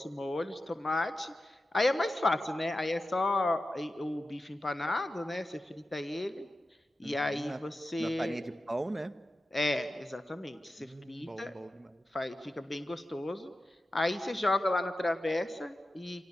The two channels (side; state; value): both; normal; correlation 0.93